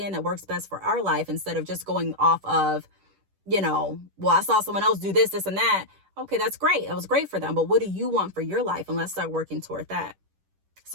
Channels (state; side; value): late; left; 10 ms